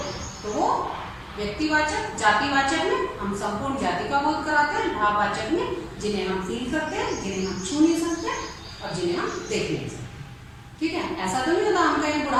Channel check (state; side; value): identical; both; correlation 1.00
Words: तो वो व्यक्तिवाचक। जातिवाचक में हम संपूर्ण जाति का बोध कराते हैं, भाववाचक में जिन्हें हम फील करते हैं, जिन्हें हम छू नहीं सकते और जिन्हें हम देख नहीं सकते, ठीक है। ऐसा तो नहीं होता हम कहें